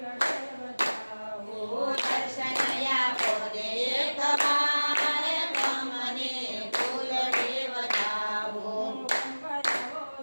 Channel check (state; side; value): inverted; both; correlation -1.00